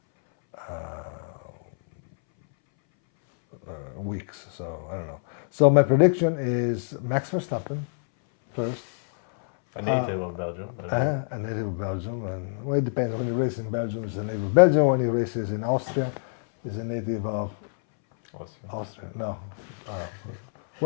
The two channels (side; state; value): right; silent; 61 dB below the other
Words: weeks. So I don't know. So my prediction is Max Verstappen first. A native of Belgium. A native of Belgium, and it depends. When he races in Belgium, he's a native of Belgium. When he races in Austria, he's a native of Austria. No.